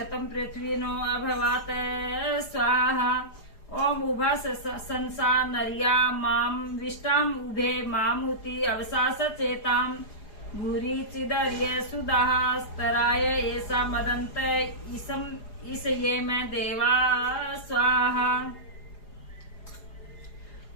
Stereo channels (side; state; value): right; late; 4.9 ms